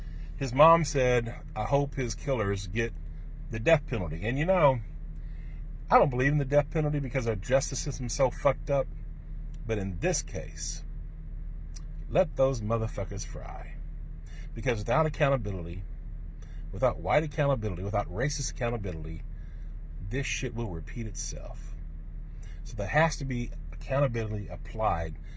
his mom said, I hope his killers get the death penalty. And I don't believe in the death penalty because our justice system's so fucked up. But in this case, let those motherfuckers fry. Because without accountability, without white accountability, without racist accountability, this shit will repeat itself. So there has to be accountability applied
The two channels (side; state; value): both; identical; correlation 1.00